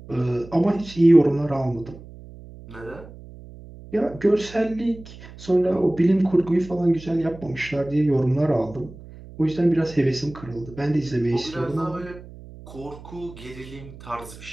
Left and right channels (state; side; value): noise; right; hum, 17 dB below the sound